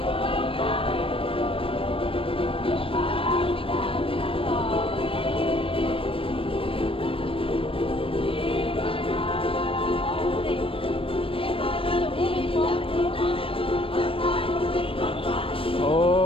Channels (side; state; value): right; late; 0.26 ms